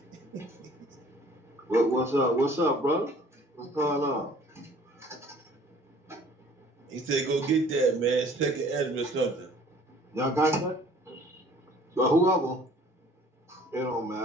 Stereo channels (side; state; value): both; normal; correlation 0.53